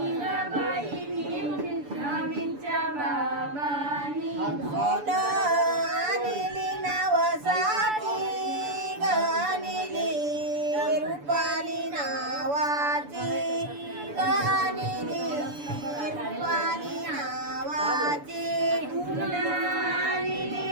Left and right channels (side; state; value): left; late; 6.9 ms